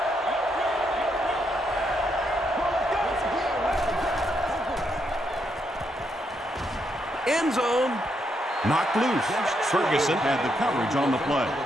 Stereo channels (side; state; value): both; normal; correlation 0.78